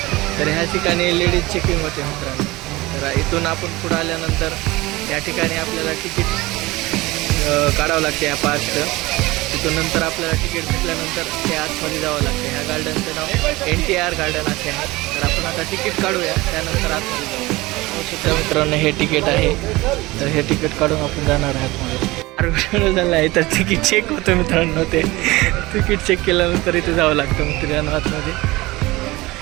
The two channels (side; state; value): left; quieter; 20.6 dB